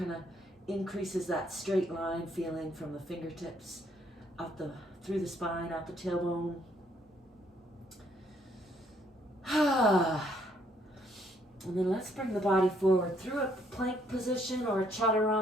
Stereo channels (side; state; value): both; normal; correlation 0.68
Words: of increases that straight line feeling from the fingertips out through the spine, out the tailbone. And then let's bring the body forward through a plank position or a